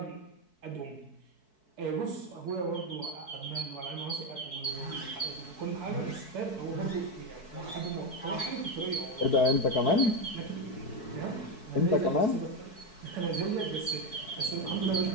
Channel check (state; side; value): late; right; 4.6 ms